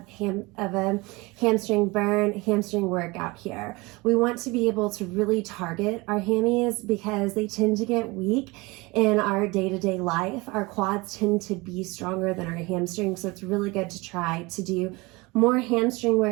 a hamstring burn, hamstring workout here. We want to be able to really target our hammies because they tend to get weak in our day-to-day life. Our quads tend to be stronger than our hamstrings, so it's really good to try to do more hamstring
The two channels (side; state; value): left; quieter; 24.1 dB